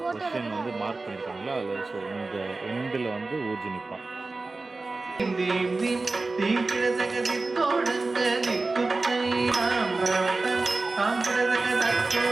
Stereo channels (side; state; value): left; quieter; 3.5 dB